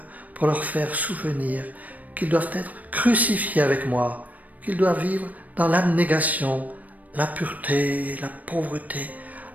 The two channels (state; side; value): late; left; 0.075 ms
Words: pour leur faire souvenir qu'ils doivent être crucifiés avec moi, qu'ils doivent vivre dans l'abnégation, la pureté, la pauvreté,